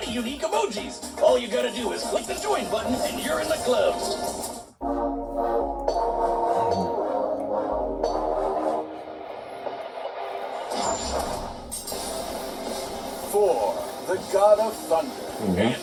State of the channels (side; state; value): both; identical; correlation 1.00